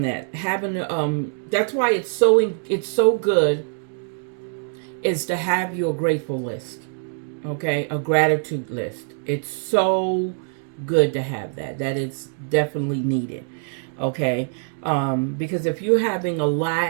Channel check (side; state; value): left; silent; 60 dB below the other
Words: that. That's why it's so good is to have your grateful list. Okay, a gratitude list. It's so good to have that. That is definitely needed. Okay, because if you're having a